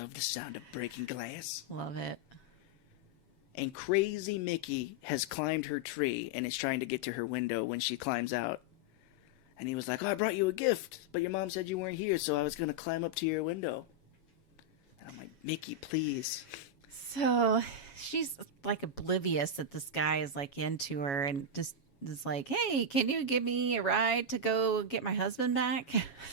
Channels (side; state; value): right; late; 7.2 ms